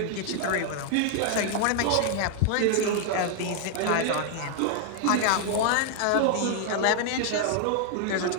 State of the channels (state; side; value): different; both; correlation 0.00